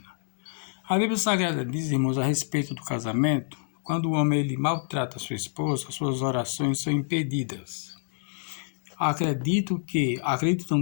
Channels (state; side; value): silent; right; digital silence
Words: A Bíblia Sagrada diz, irmãos, a respeito do casamento, quando o homem ele maltrata a sua esposa, suas orações são impedidas. Acredito,